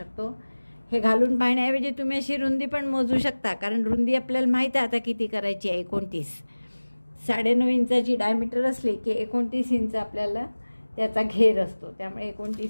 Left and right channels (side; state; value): both; inverted; correlation -1.00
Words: हे घालून पाहण्याऐवजी तुम्ही अशी रुंदी पण मोजू शकता, कारण रुंदी आपल्याला माहीत आहे आता किती करायची आहे. 29. 9.5 इंचाची डायमीटर असली की 29 इंच आपल्याला त्याचा घेर असतो, त्यामुळे